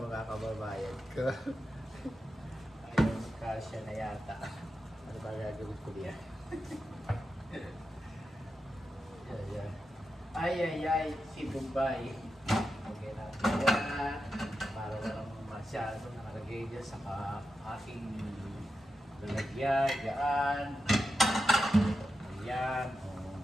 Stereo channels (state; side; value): normal; both; correlation 0.89